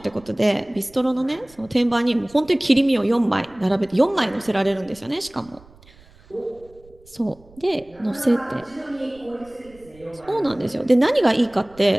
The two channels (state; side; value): noise; right; rumble, 26 dB below the sound